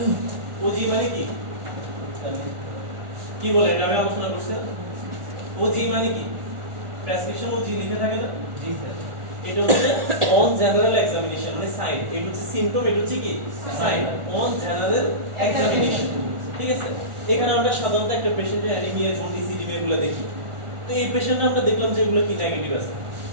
মানে কি কি বলে এটা আমি আলোচনা করছি। ওজি মানে কি? প্রেসক্রিপশন ওজি লিখে থাকে না? জি স্যার। এটা হচ্ছে অন জেনারেল এক্সামিনেশন মানে সাইন। এটা হচ্ছে সিম্পটম, এটা হচ্ছে কি সাইন অন জেনারেল এক্সামিনেশন। ঠিক আছে, এখানে আমরা সাধারণত একটা পেশেন্টের অ্যানিমিয়া, জন্ডিস, ইডিমা এগুলো দেখি। তো এই পেশেন্টটা আমরা দেখলাম যে এগুলো কি নেগেটিভ আছে,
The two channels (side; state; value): left; late; 1.4 ms